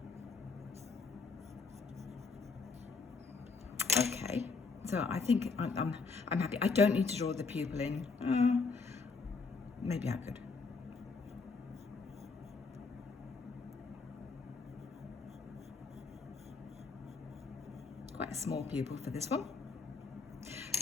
Okay, so I think I'm happy. I don't need to draw the pupil in. Maybe I could. Quite a small pupil for this one.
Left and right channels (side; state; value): right; quieter; 4.5 dB